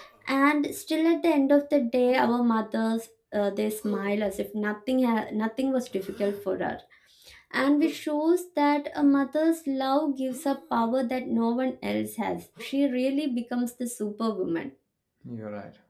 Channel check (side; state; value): both; identical; correlation 1.00